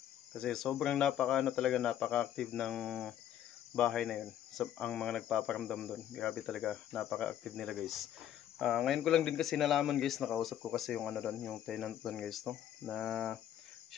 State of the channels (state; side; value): quieter; right; 10.9 dB